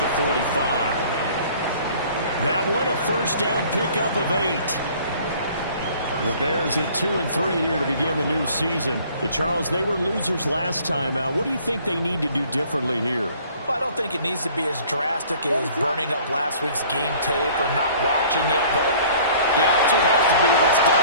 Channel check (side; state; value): both; inverted; correlation -0.53